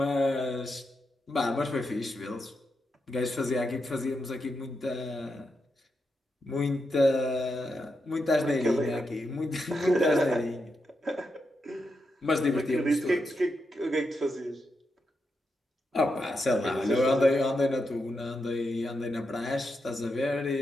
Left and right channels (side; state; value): both; normal; correlation 0.85